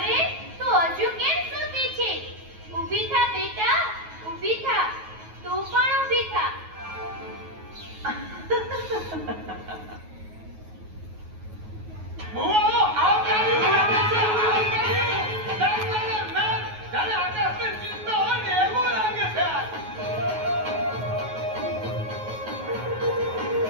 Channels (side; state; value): left; late; 9.3 ms